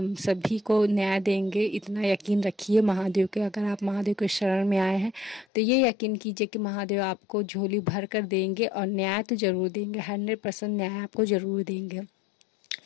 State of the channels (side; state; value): right; drops out; at 5.5 s